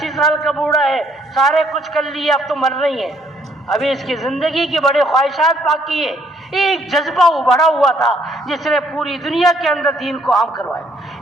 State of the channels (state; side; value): normal; both; correlation 0.66